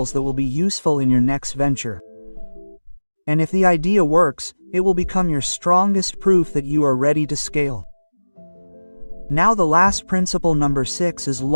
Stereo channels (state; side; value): inverted; both; correlation -1.00